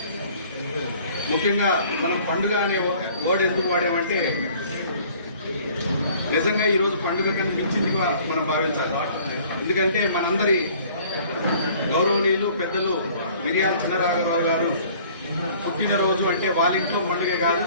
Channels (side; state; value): both; inverted; correlation -0.53